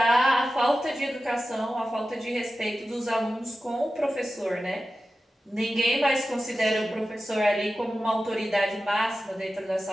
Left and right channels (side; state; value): both; normal; correlation 0.94